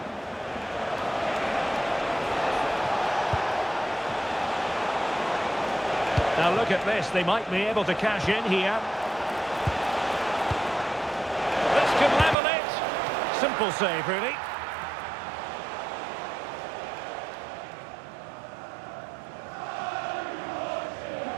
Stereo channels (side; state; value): left; drops out; at 12.4 s